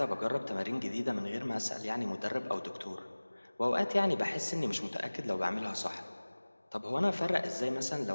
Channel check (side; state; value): both; inverted; correlation -1.00